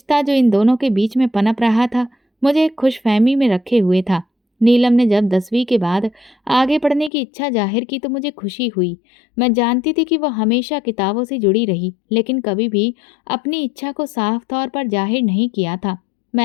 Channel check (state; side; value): drops out; right; at 7.1 s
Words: जो इन दोनों के बीच में पनप रहा था, मुझे एक खुशफहमी में रखे हुए था। नीलम ने जब 10वीं के बाद आगे पढ़ने की इच्छा जाहिर की तो मुझे खुशी हुई। मैं जानती थी कि वह हमेशा किताबों से जुड़ी रही, लेकिन कभी भी अपनी इच्छा को साफ तौर पर जाहिर नहीं किया था।